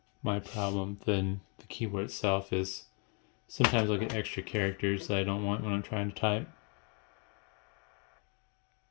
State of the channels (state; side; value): quieter; right; 36.1 dB